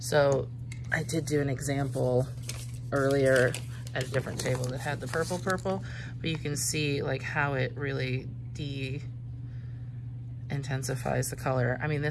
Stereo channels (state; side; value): identical; both; correlation 1.00